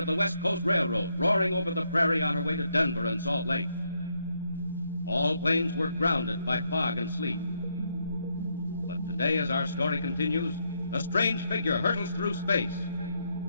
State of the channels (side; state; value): both; inverted; correlation -0.77